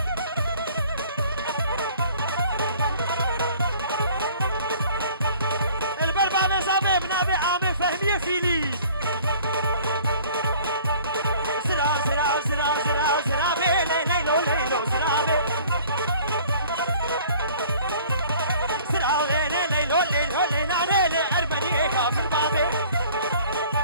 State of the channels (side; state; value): both; inverted; correlation -0.51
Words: البربع مزابي بنابي عامي فهمية فيلي